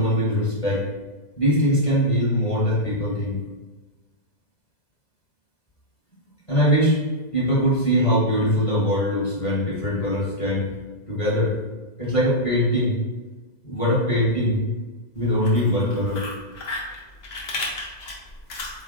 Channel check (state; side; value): late; right; 2.0 ms